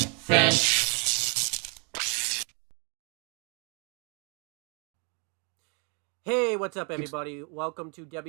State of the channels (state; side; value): quieter; left; 35.8 dB